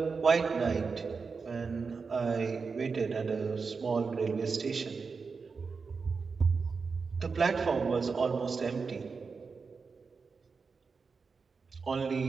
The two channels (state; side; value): quieter; left; 4.9 dB